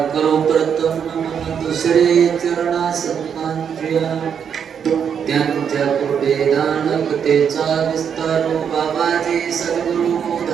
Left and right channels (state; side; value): quieter; left; 7.6 dB